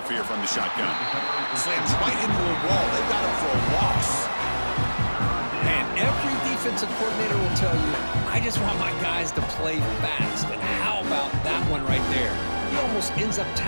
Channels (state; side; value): inverted; both; correlation -1.00